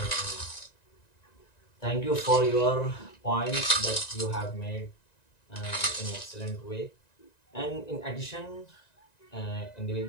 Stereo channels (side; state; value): right; late; 1.9 ms